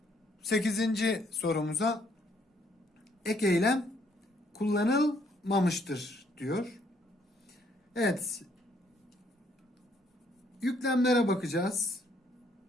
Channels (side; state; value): both; normal; correlation 0.68